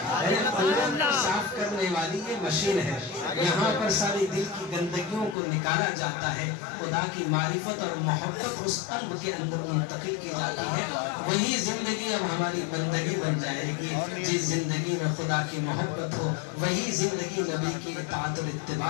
اندر کو صاف کرنے والی یہ مشین ہے، یہاں پر ساری دل کی گندگیوں کو نکالا جاتا ہے، خدا کی معرفت اور محبت اس قلب کے اندر منتقل کی جاتی ہے، وہی زندگی اب ہماری بندگی بن جائے گی، جس زندگی میں خدا کی محبت ہو وہی زندگی نبی کی اطاعت اور اتباع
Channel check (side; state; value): right; drops out; at 5.4 s